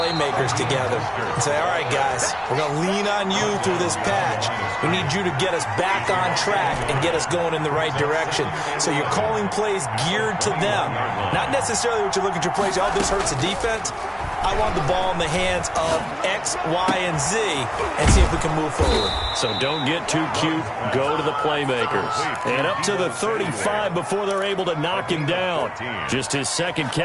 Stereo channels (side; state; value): both; identical; correlation 1.00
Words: together and say, all right, guys, we're going to lean on you through this patch. We need you to get us back on track and get us going in the right direction. So you're calling plays geared to them. Not necessarily what you're looking to plays, oh, this hurts the defense. I want the ball in the hands of X, Y, and Z and see if we can move forward. So don't get too cute. Go to the playmakers. And up to the 35 before they're able to knock him down. Just his second